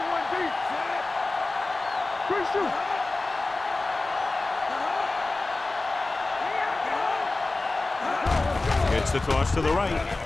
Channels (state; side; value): quieter; right; 3.2 dB